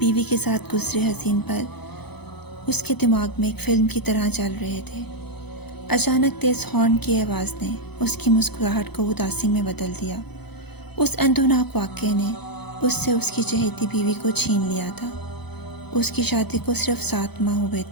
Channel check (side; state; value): right; late; 0.98 ms